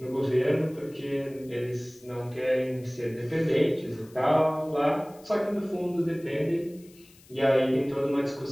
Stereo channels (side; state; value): left; noise; hiss, 26 dB below the sound